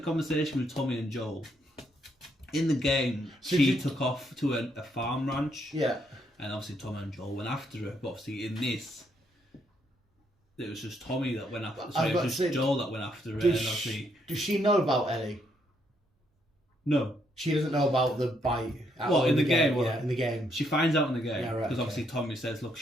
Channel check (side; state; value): both; normal; correlation 0.74